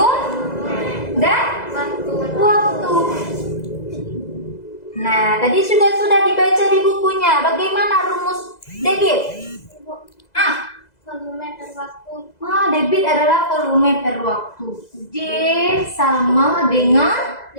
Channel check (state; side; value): late; right; 2.0 ms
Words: dan waktu. Nah, tadi sudah dibaca di bukunya. Bagaimana rumus debit? Volume per waktu. Debit adalah volume per waktu. D sama dengan